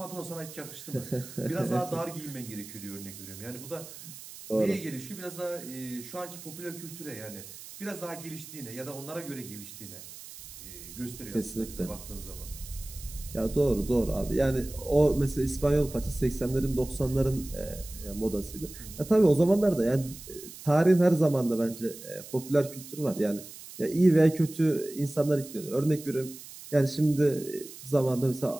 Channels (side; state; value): right; noise; hiss, 15 dB below the sound